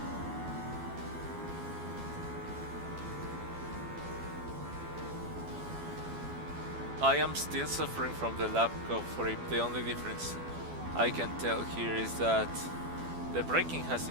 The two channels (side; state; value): left; late; 12 ms